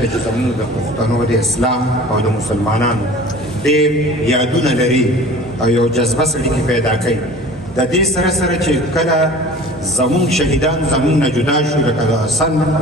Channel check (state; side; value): normal; both; correlation 0.43